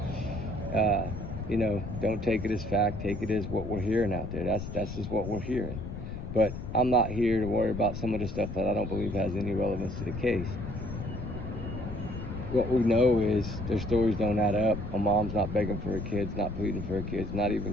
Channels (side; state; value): left; noise; rumble, 8 dB below the sound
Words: You know, don't take it as fact, take it as what we're hearing out there. That's just what we're hearing. But I'm not here to worry about some of the stuff that I don't believe has any relevance to the case. What we know is their stories don't add up. A mom's not begging for her kids, not pleading for her kids, not